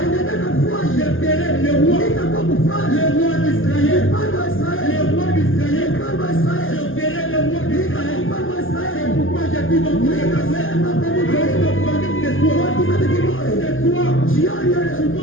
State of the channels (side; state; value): right; late; 0.59 ms